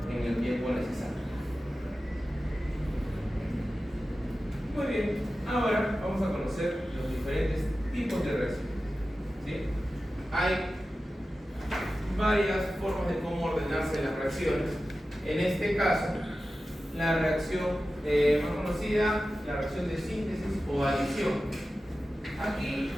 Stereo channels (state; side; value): normal; both; correlation 0.94